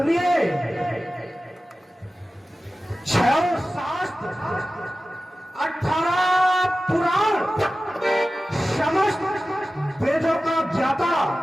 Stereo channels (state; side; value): normal; both; correlation 0.95